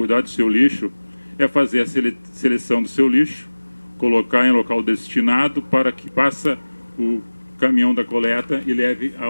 do seu lixo, é fazer a seleção do seu lixo, colocar em local destinado para que passe o caminhão da coleta e leve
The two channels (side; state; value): both; inverted; correlation -1.00